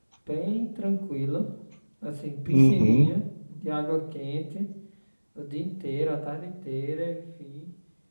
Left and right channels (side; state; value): both; inverted; correlation -1.00